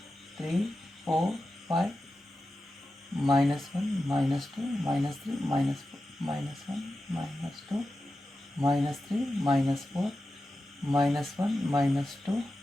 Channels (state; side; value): normal; both; correlation 0.92